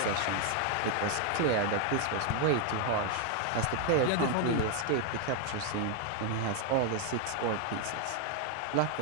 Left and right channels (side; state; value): both; different; correlation 0.01